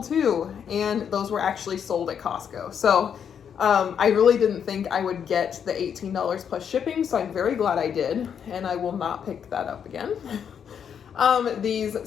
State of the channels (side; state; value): right; quieter; 7.9 dB